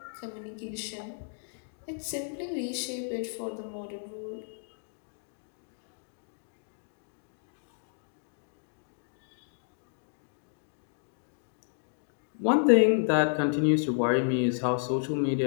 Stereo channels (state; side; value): silent; right; digital silence